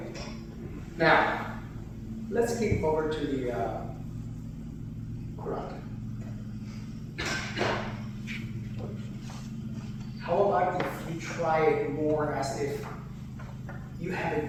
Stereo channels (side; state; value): both; identical; correlation 1.00